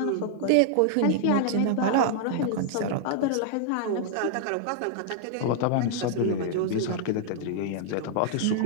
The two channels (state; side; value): different; both; correlation -0.01